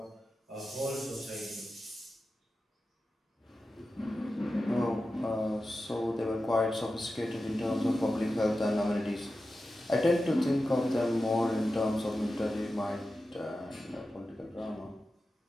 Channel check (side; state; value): both; normal; correlation 0.93